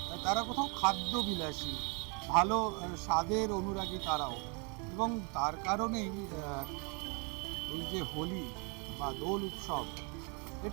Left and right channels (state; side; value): quieter; left; 34.1 dB